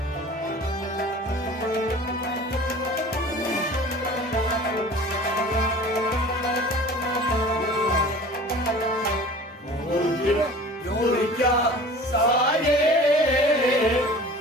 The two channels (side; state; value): both; normal; correlation 0.42